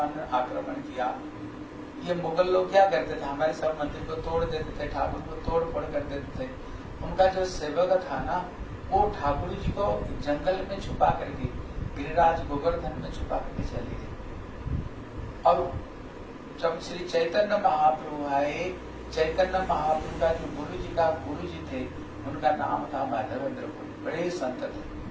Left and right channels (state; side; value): identical; both; correlation 1.00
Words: ने आक्रमण किया, ये मुगल लोग क्या करते थे, हमारे सब मंदिर को तोड़ देते थे, ठाकुर को तोड़ फोड़ कर देते थे। उनका जो सेवक था ना, वो ठाकुर जी को जंगल में छुपा करके गिरिराज गोवर्धन में छुपा करके चले गए। और जब श्री चैतन्य महाप्रभु आए, चैतन्य महाप्रभु का जो गुरु जी थे, उनका नाम था माधवेंद्र पुरी, बड़े संत